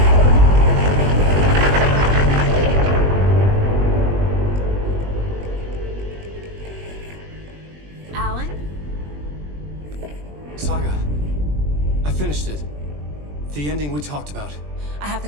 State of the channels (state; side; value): late; left; 20 ms